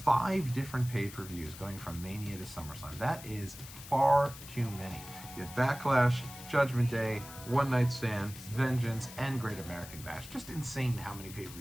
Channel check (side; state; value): left; noise; hiss, 15 dB below the sound